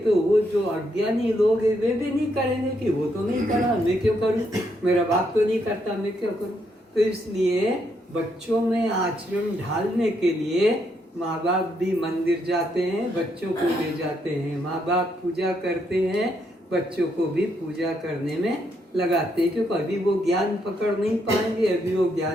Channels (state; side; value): normal; both; correlation 0.76